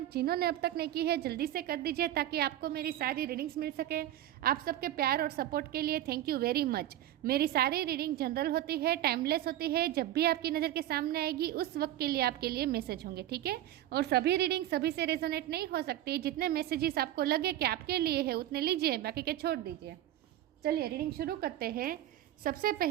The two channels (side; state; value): left; quieter; 13.2 dB